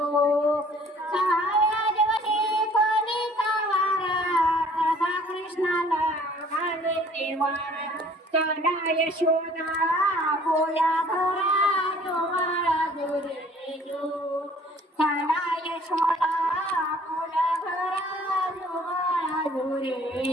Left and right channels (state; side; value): normal; both; correlation 0.54